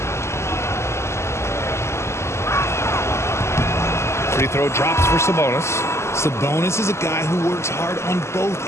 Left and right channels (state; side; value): late; right; 0.13 ms